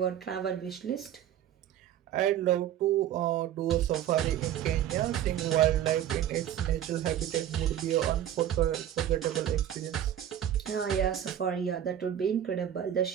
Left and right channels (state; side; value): quieter; left; 10.9 dB